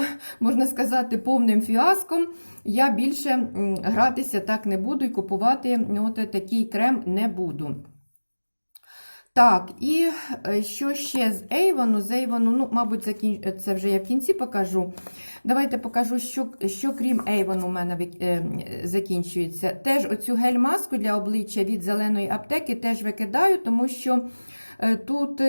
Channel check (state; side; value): inverted; both; correlation -1.00